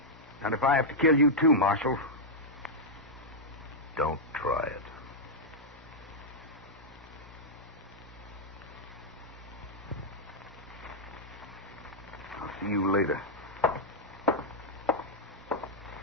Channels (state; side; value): normal; both; correlation -0.05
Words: Not if I have to kill you too, Marshal. Don't try it. See you later.